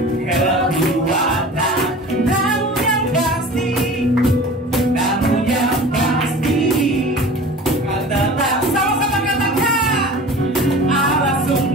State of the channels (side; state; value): both; normal; correlation 0.39